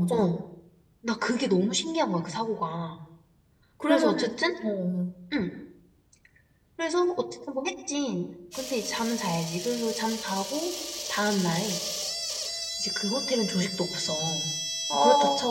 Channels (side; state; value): both; identical; correlation 1.00